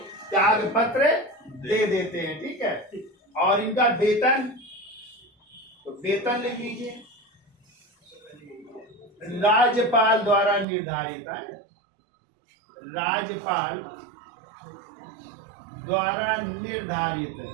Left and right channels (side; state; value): left; drops out; at 10.7 s